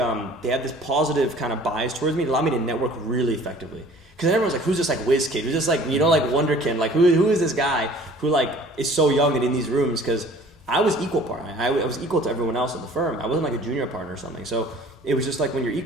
have this positive kind of bias towards me. It allowed me to network really effectively. Because everyone's who's this whiz kid? Who's this wonderkin? Who is this guy who is so young and in these rooms? Because I was equal partner. I was equal to everyone else in the firm. I wasn't a junior partner or something. So it was just when you're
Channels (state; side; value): normal; both; correlation 0.50